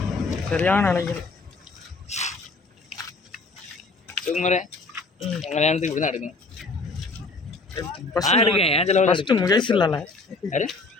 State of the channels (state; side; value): quieter; right; 3.6 dB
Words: சரியான அலைகள். சுகுமாரே உங்கள் கல்யாணத்துக்கு இப்படி தான் எடுக்கணும். எடுக்கேன் ஏன் செலவு. ஃபஸ்ட்டு முகேஷ் இல்லைல்ல? யாரு